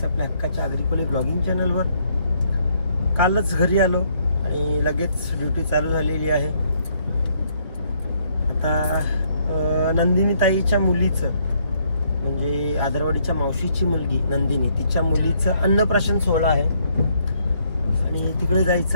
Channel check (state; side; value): inverted; both; correlation -0.70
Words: आपल्या हक्काच्या आग्रिकोली ब्लॉगिंग चॅनलवर. कालच घरी आलो आणि लगेच ड्युटी चालू झालेली आहे. आता नंदिनी ताईच्या मुलीचं म्हणजे आदरवाडीच्या मावशीची मुलगी नंदिनी, तिच्या मुलीचं अन्नप्राशन सोहळा आहे आणि तिकडे